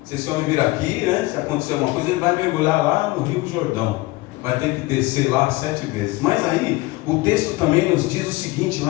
Se esse homem vir aqui, né, se acontecer alguma coisa, ele vai mergulhar lá no Rio Jordão. Vai ter que descer lá 7 vezes. Mas aí, o texto também nos diz o seguinte,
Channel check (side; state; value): right; quieter; 21.1 dB